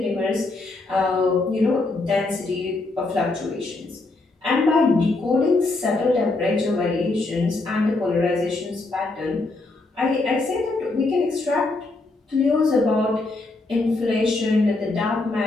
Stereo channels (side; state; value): right; quieter; 3.2 dB